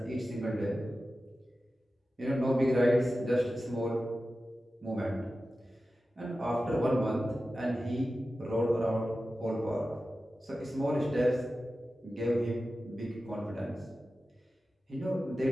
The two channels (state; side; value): normal; both; correlation 0.94